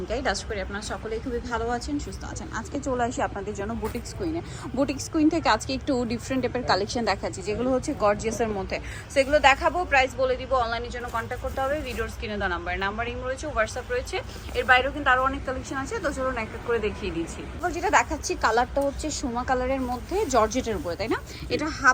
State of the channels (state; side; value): identical; both; correlation 1.00